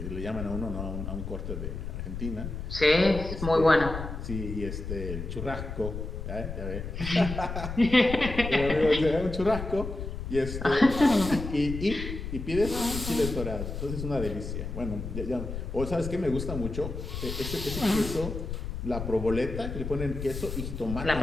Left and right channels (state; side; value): noise; left; rumble, 6 dB below the sound